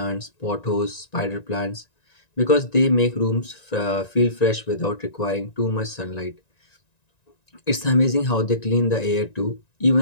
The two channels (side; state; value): right; late; 1.9 ms